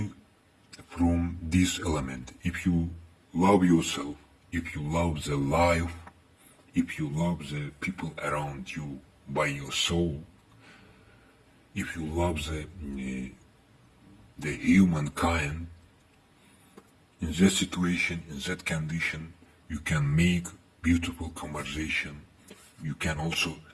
from this element. If you love yourself, if you love the life, if you love the people around you by your soul, if you love the humankind, in that situation, in that condition, you can make beautiful conversation. You can also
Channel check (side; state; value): both; identical; correlation 1.00